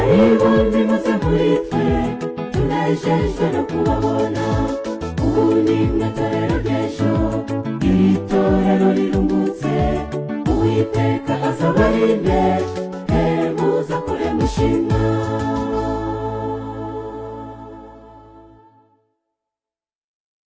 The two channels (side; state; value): both; identical; correlation 1.00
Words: nimuze muri twe tunejejwe no kubabona ubu ni mwe torero ry'ejo iri torero riruhutse uwiteka azabarinde muza kure mushima